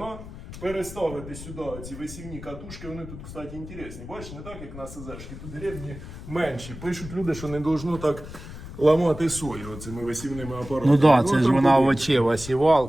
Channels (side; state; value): left; noise; rumble, 12 dB below the sound